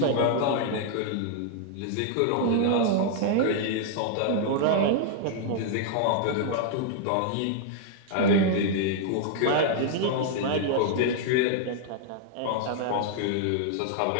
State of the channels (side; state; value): both; different; correlation 0.00